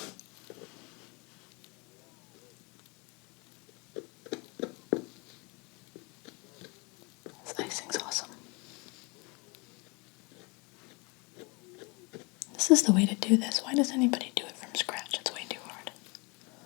This icing's awesome. This is the way to do this. Why does anybody do it from scratch? It's way too hard.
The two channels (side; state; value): right; quieter; 29.0 dB